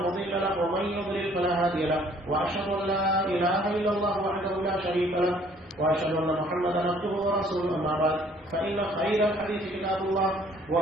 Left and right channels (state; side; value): normal; both; correlation 0.59